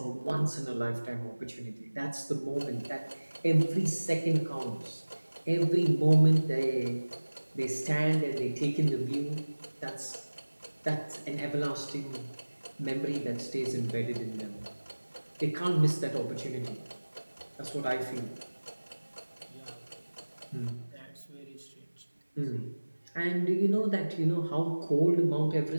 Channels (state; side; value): inverted; both; correlation -1.00